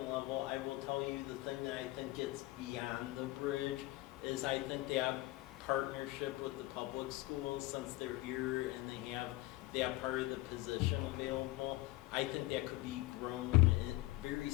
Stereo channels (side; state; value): right; quieter; 18.8 dB